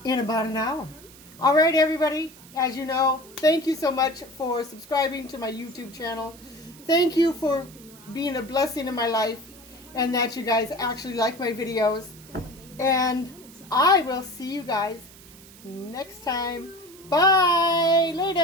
in about an hour. All right, everybody. As you know, thank you so much for subscribing to my YouTube channel. Thank you for being a blessing in my life and that you guys actually like my videos. And I will see you guys next time. Bye.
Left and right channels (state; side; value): noise; right; hiss, 21 dB below the sound